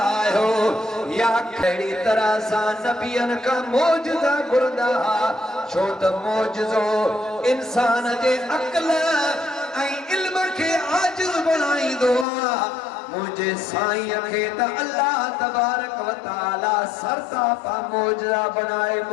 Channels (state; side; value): drops out; right; at 12.2 s